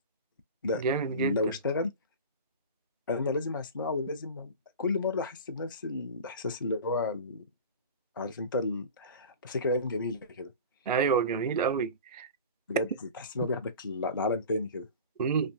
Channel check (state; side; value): inverted; both; correlation -0.34